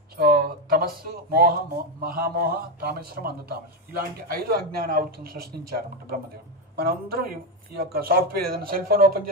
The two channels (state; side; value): normal; both; correlation 0.09